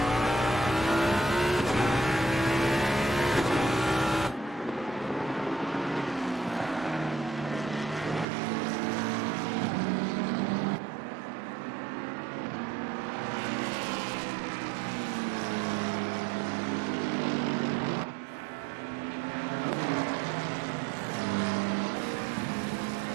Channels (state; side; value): drops out; left; at 8.2 s